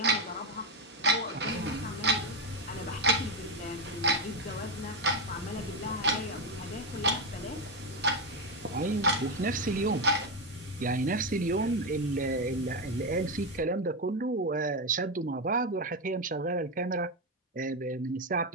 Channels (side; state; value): both; normal; correlation 0.09